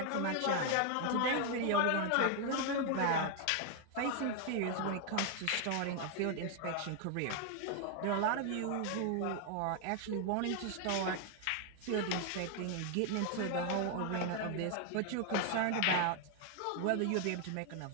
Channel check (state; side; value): different; both; correlation 0.00